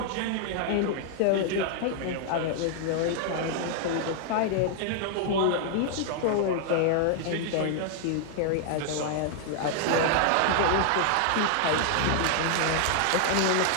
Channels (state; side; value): different; both; correlation 0.00